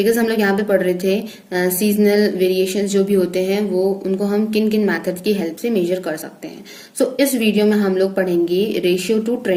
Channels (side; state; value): both; identical; correlation 1.00